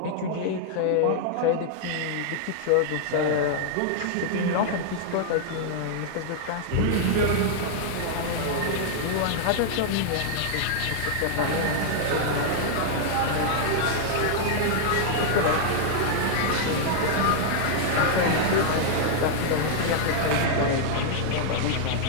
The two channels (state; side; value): different; both; correlation -0.01